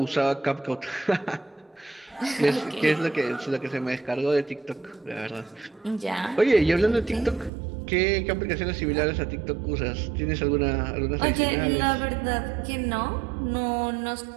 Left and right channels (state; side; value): drops out; left; at 7.5 s